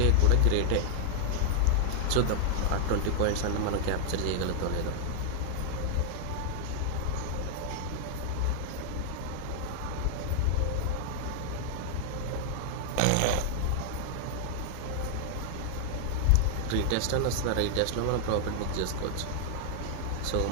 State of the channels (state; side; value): different; both; correlation 0.00